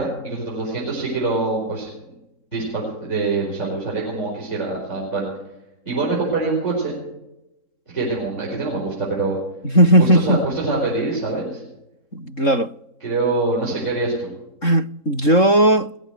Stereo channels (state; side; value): late; right; 3.7 ms